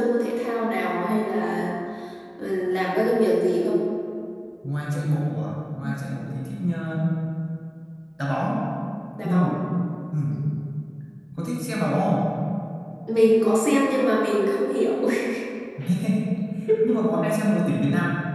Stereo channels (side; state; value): both; identical; correlation 1.00